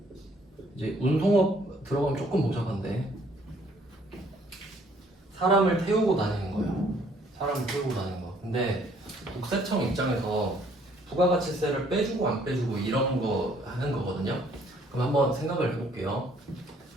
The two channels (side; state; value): both; normal; correlation 0.63